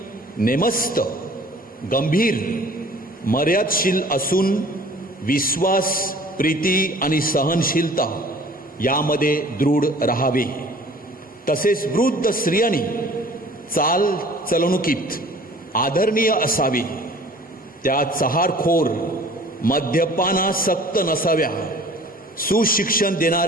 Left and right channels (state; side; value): normal; both; correlation 0.49